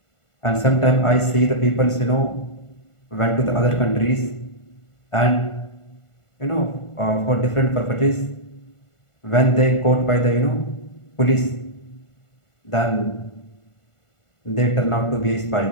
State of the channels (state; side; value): late; right; 1.5 ms